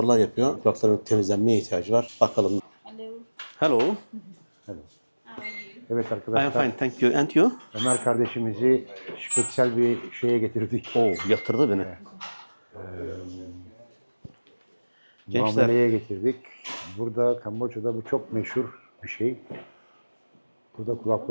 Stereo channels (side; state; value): both; inverted; correlation -1.00